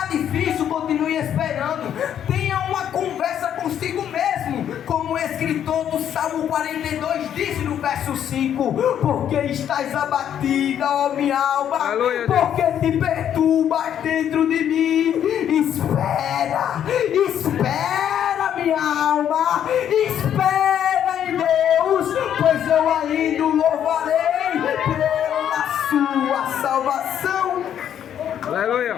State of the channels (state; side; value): quieter; right; 9.7 dB